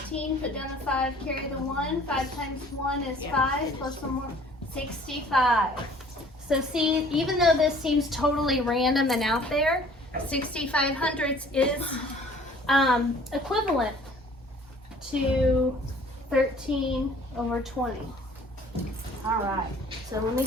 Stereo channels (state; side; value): normal; both; correlation 0.53